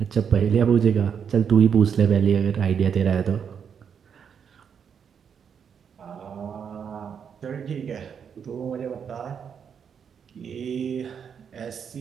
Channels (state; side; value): quieter; left; 7.3 dB